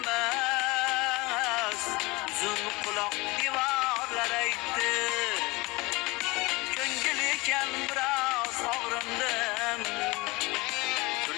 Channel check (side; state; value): right; quieter; 23.5 dB